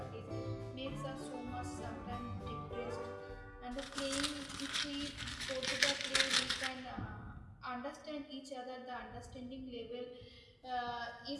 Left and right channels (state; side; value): identical; both; correlation 1.00